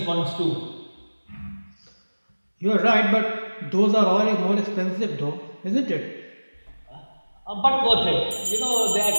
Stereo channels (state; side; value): inverted; both; correlation -1.00